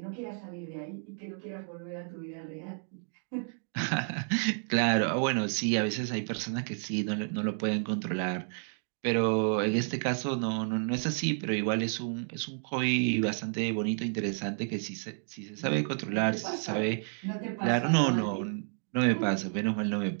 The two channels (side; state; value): left; silent; 57 dB below the other